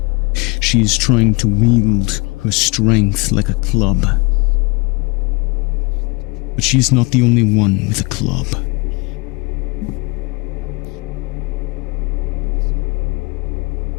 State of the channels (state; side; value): quieter; right; 27.8 dB